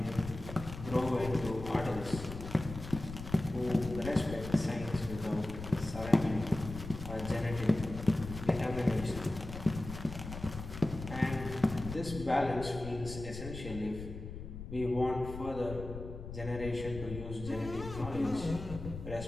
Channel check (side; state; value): left; noise; rumble, 9 dB below the sound